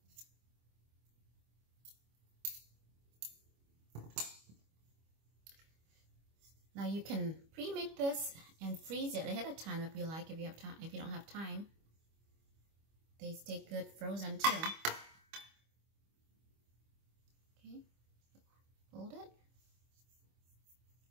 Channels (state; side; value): late; left; 25 ms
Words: Now you can pre-make this and freeze it ahead of time if you like, if you have time. If you don't have time, they stay good frozen too. Okay, fold it.